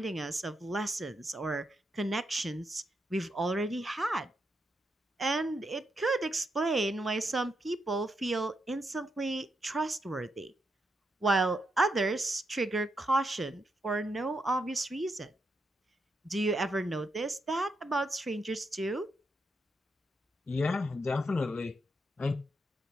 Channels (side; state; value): both; normal; correlation 0.82